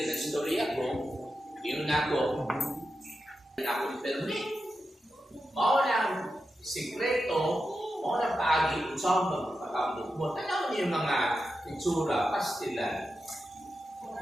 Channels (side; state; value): both; normal; correlation 0.89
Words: ang storya ko, yun na ako permit. Mao lang sikreto, mao lang paagi kung saan magpapakambot mo. Tanaw niyo yung mga itsura, pastilan.